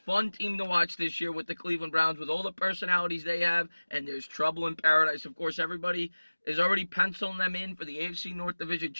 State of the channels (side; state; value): both; inverted; correlation -1.00